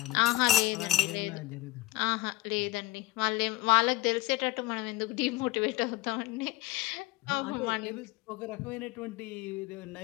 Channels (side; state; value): right; quieter; 18.7 dB